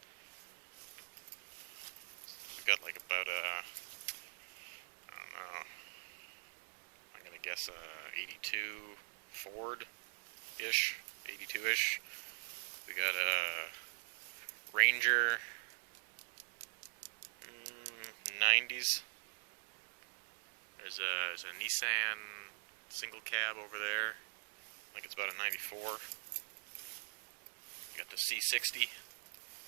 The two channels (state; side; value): silent; left; digital silence